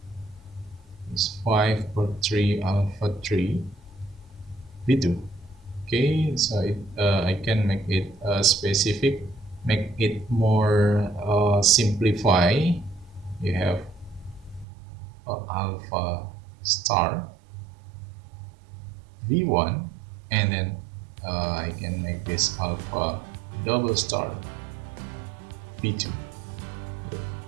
is 5 per 3 alpha 3 v2. Okay, so I can make it specific, make it more simplify. You have alpha star v1 and then I can make this alpha double star v2.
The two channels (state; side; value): drops out; left; at 14.7 s